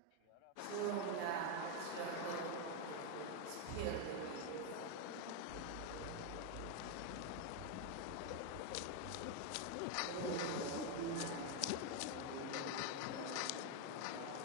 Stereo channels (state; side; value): different; both; correlation 0.01